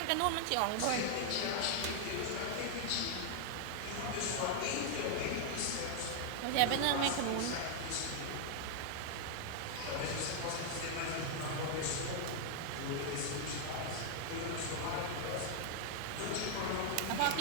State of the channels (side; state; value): both; different; correlation 0.00